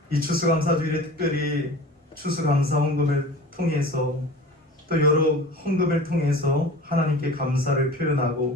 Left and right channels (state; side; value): normal; both; correlation 0.39